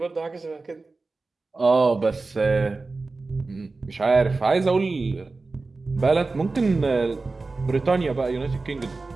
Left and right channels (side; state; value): left; quieter; 3.7 dB